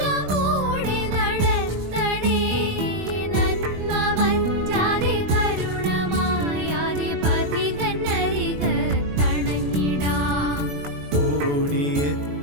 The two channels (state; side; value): late; left; 21 ms